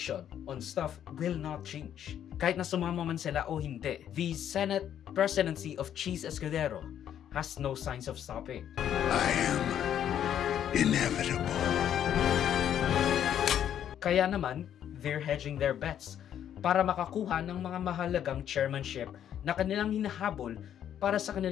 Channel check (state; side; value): quieter; right; 10.0 dB